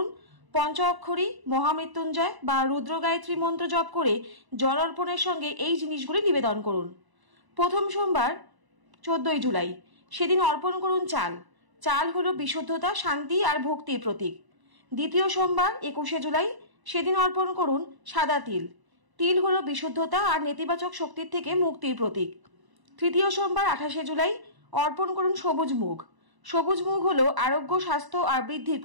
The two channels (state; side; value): late; left; 1.0 ms